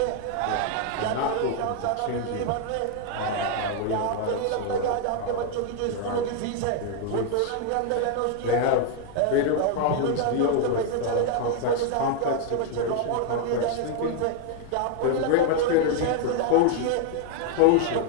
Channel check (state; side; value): different; both; correlation 0.00